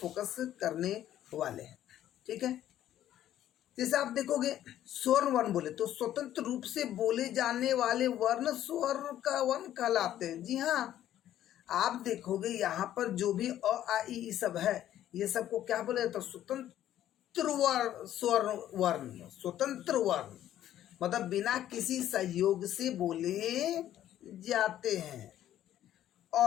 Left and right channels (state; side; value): quieter; right; 12.1 dB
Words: करने वाले हैं, ठीक है। जैसे आप देखोगे स्वर्ण वर्ण बोले तो स्वतंत्र रूप से बोले जाने वाले वर्ण स्वर का वर्ण कहलाते हैं। जी हाँ, आप देखोगे यहाँ पर जो भी अ आ ई सब है, ये सबको क्या बोले तो स्वतंत्र वर्ण, स्वर्ण वर्ण, स्वतंत्र वर्ण मतलब बिना किसी सहयोग से बोले जाते हैं।